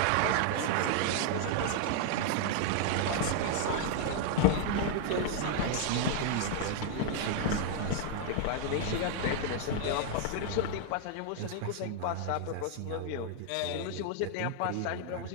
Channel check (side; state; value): both; different; correlation 0.00